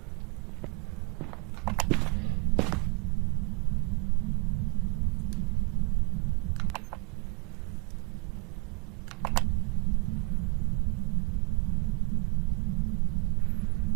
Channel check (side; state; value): left; quieter; 27.8 dB